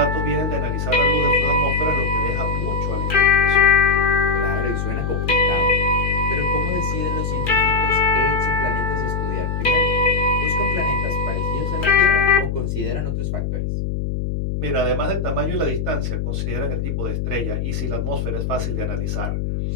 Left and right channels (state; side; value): noise; left; hum, 2 dB below the sound